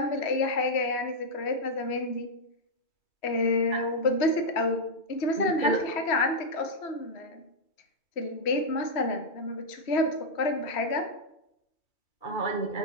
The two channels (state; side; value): late; right; 3.1 ms